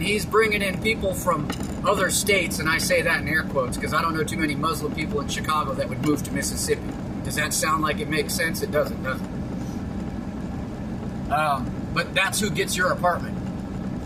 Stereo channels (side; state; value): both; identical; correlation 1.00